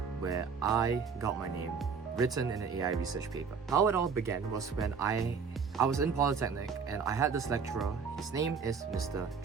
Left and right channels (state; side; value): quieter; left; 5.8 dB